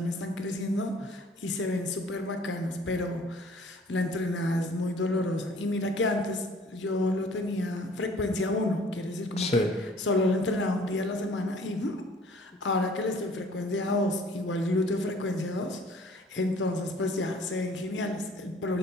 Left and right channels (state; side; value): normal; both; correlation 0.53